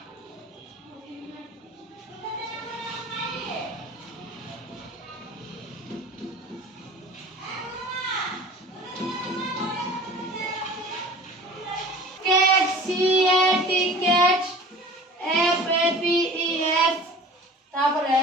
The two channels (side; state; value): both; normal; correlation 0.42